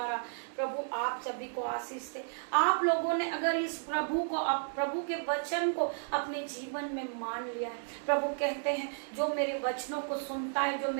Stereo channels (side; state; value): left; silent; digital silence